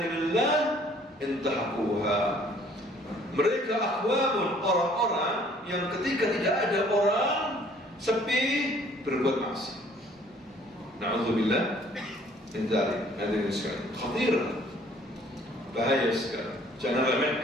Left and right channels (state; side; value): normal; both; correlation 0.58